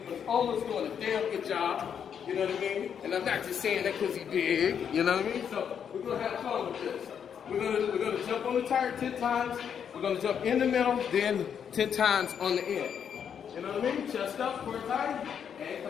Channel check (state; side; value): quieter; right; 7.9 dB